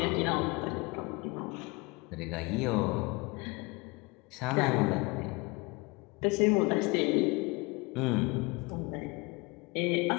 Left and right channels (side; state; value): right; quieter; 26.2 dB